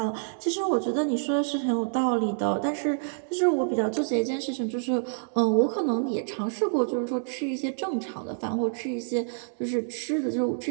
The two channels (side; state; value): left; silent; 60 dB below the other